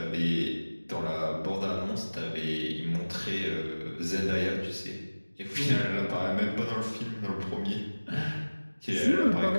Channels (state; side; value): inverted; both; correlation -1.00